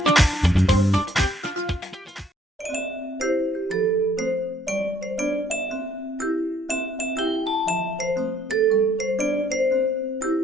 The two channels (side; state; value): both; normal; correlation 0.64